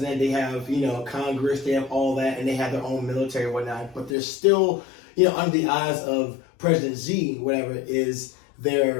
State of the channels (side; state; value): right; drops out; at 4.2 s